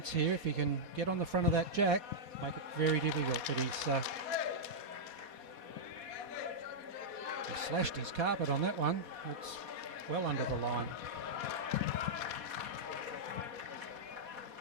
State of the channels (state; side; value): late; left; 4.2 ms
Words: here. If he can get on the front of that jack, make it very difficult, but he slashed his carpet on that one. It's well under the line.